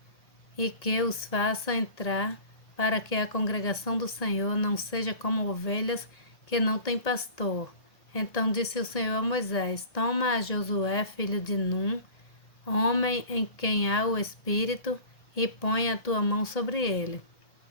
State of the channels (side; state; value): right; late; 1.8 ms